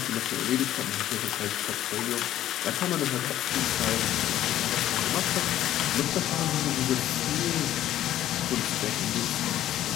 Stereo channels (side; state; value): right; quieter; 12.7 dB